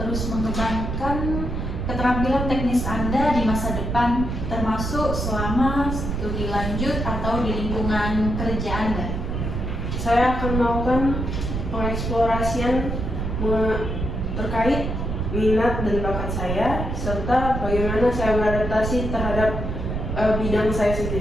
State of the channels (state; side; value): noise; right; rumble, 3 dB below the sound